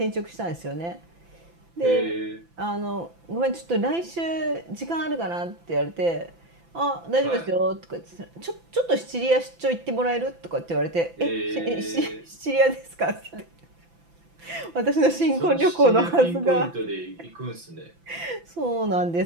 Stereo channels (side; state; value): left; late; 5.9 ms